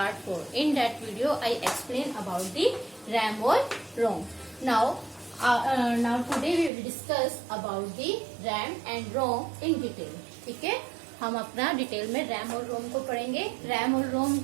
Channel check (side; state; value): left; drops out; at 6.7 s